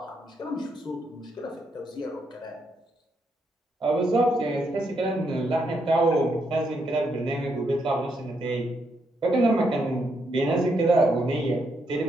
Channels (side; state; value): both; normal; correlation 0.78